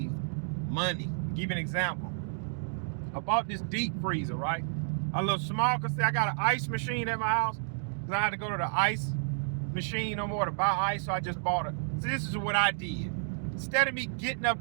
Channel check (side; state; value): left; silent; digital silence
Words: money. I'll give you an example. I bought this deep freezer, right? A little small, because I got an ice machine at my house. Because I had to go to the ice machine no more to buy ice, so I just bought it. So this is what I did. Instead of me getting